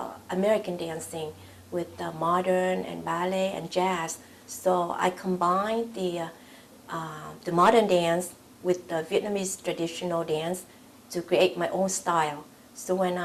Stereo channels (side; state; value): both; identical; correlation 1.00